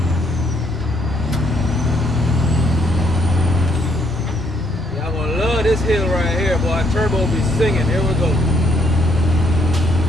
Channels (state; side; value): noise; left; hum, 23 dB below the sound